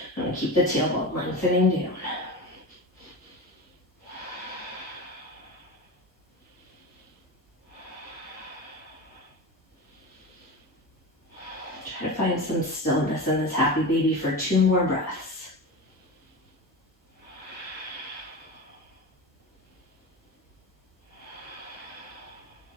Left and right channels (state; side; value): normal; both; correlation 0.26